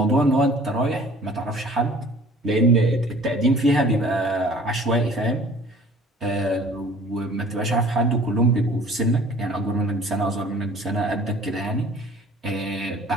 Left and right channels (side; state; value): both; normal; correlation 0.49